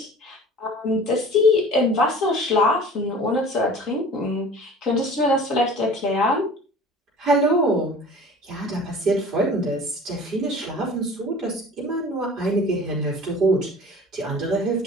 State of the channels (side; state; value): both; normal; correlation 0.43